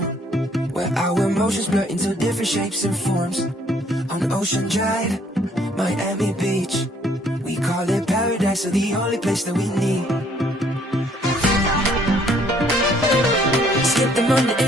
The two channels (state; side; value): normal; both; correlation 0.63